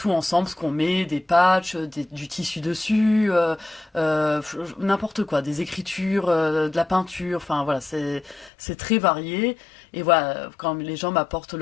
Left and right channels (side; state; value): right; drops out; at 8.5 s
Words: ensemble, ce qu'on met, des patchs, du tissu dessus, n'importe quoi, des écritures, de la peinture, enfin voilà, c'est très varié. Et voilà, quand les gens m'apportent